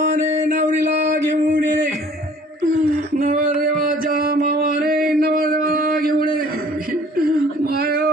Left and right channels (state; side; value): normal; both; correlation 0.53